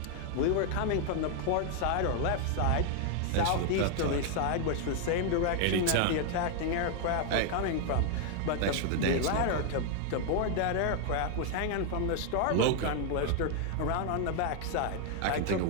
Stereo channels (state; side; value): different; both; correlation 0.00